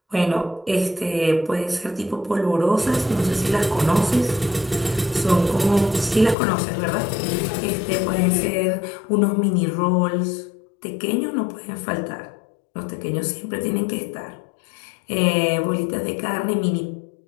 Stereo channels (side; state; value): right; drops out; at 6.4 s